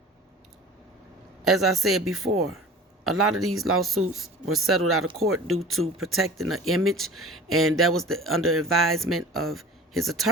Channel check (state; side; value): normal; both; correlation 0.40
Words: I said before, a lot of these lawsuits were settled out of court due to protecting the image, and that was under advisement of his